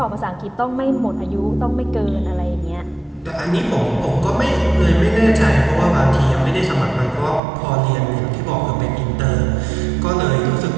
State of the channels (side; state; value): left; drops out; at 7.4 s